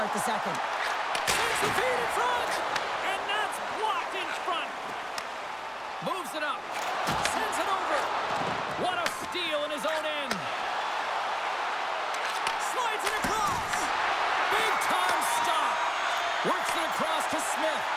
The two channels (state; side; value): identical; both; correlation 1.00